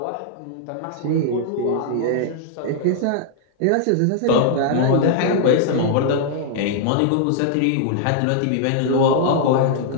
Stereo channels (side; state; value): both; different; correlation -0.01